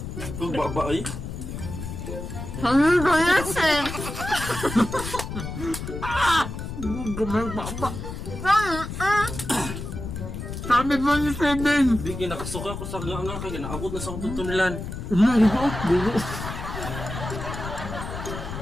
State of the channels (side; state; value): left; noise; rumble, 7 dB below the sound